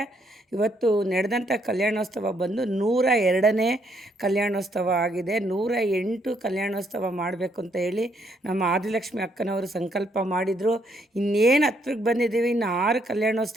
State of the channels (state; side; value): normal; both; correlation 0.72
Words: ಇವತ್ತು ನಡೆದಂಥ ಕಲ್ಯಾಣೋತ್ಸವ ಬಂದು 102ನೇ ಕಲ್ಯಾಣೋತ್ಸವ ಆಗಿದೆ. 108 ಕಲ್ಯಾಣೋತ್ಸವ ಮಾಡಬೇಕು ಅಂತ ಹೇಳಿ ನಮ್ಮ ಆದಿಲಕ್ಷ್ಮಿ ಅಕ್ಕನವರು ಸಂಕಲ್ಪ ಮಾಡಿದರು. ಇನ್ನೇನು ಹತ್ರಕ್ಕೆ ಬಂದಿದ್ದೀವಿ, ಇನ್ನು 6